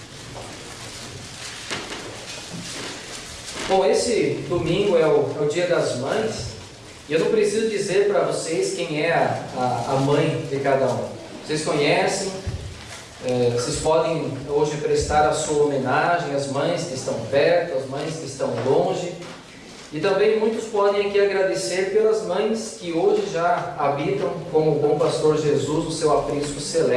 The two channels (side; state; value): both; identical; correlation 1.00